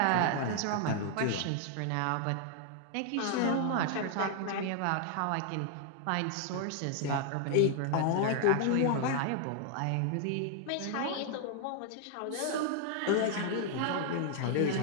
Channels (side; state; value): both; different; correlation 0.00